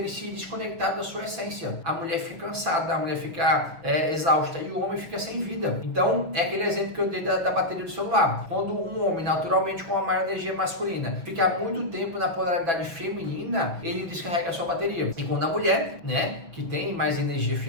se desconectado da sua essência. A mulher fica cansada, a mulher fica exausta e o homem fica sem vida. Então, é aquele exemplo que eu dei da bateria do celular. Quando um homem, naturalmente com uma maior energia masculina, fica muito tempo na polaridade feminina, ele descarrega a sua bateria. E quando a mulher, né, que tem mais energia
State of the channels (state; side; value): late; left; 6.3 ms